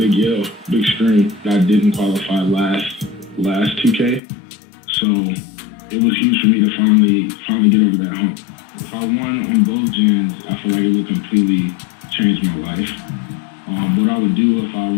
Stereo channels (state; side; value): drops out; right; at 4.2 s